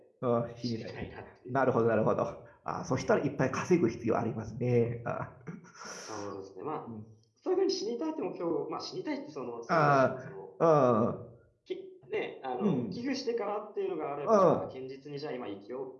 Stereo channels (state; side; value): identical; both; correlation 1.00